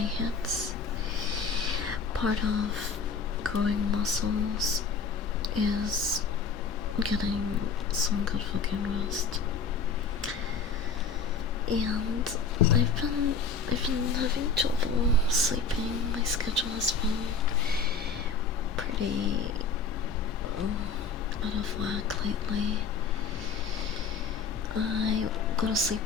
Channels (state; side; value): quieter; right; 5.0 dB